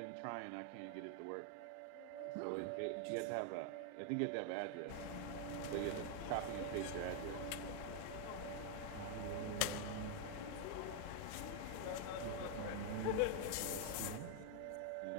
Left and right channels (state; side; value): different; both; correlation 0.00